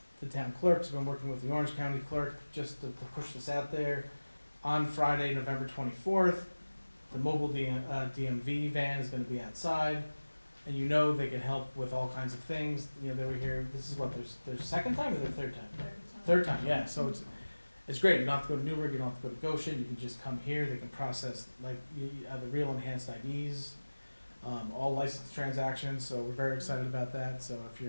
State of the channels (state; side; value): inverted; both; correlation -1.00